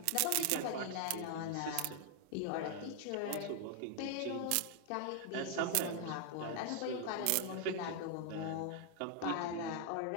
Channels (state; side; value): different; both; correlation 0.00